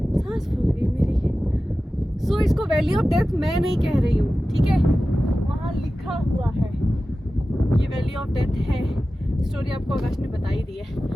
सांस फूल गई मेरी। सो इसको वैली ऑफ डेथ मैं नहीं कह रही हूँ, ठीक है, वहाँ लिखा हुआ है ये वैली ऑफ डेथ है। स्टोरी आपको आकाश ने बताई दी है।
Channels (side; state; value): both; normal; correlation 0.95